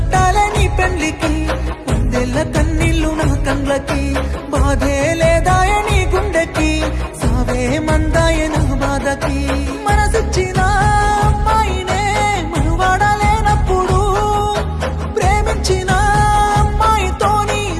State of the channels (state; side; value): identical; both; correlation 1.00